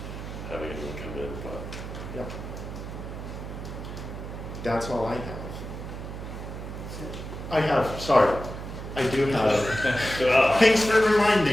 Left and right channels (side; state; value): right; noise; hum, 9 dB below the sound